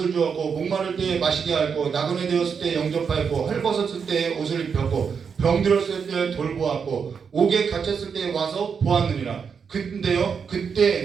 주었고 목마를 때 마시게 하였고 나그네 되었을 때 영접하였고 헐벗었을 때 옷을 입혔고 병들었을 때 돌보았고 옥에 갇혔을 때 와서 보았느니라. 근데요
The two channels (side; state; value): left; quieter; 6.3 dB